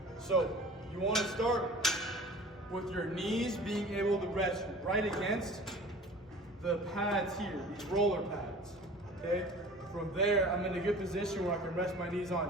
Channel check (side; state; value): both; normal; correlation 0.43